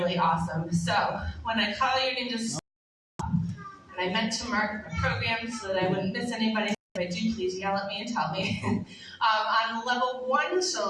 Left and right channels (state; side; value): identical; both; correlation 1.00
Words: awesome. So when I call your name, just stop. And I meant to mark my program so that I wouldn't miss anybody. If I do, please yell at me and tell me. On level 1